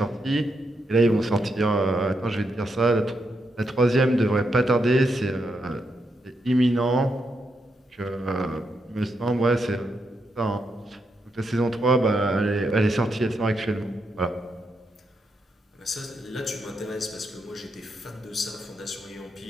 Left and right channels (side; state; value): both; normal; correlation 0.82